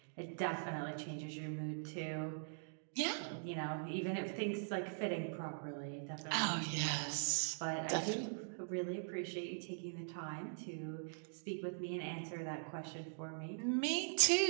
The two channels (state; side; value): silent; left; digital silence